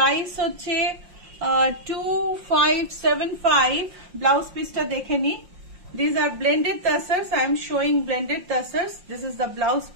হচ্ছে 2575। ব্লাউজ পিসটা দেখে নি। These are blended tassels. I am showing blended tassels. This is the blouse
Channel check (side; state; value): left; late; 5.6 ms